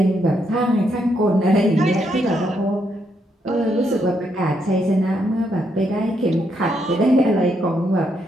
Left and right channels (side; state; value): both; normal; correlation 0.77